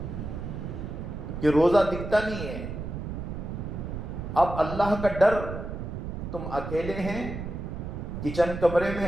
کہ روزہ دکھتا نہیں ہے، اب اللہ کا ڈر، تم اکیلے ہیں، کچن کمرے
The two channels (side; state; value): right; noise; rumble, 6 dB below the sound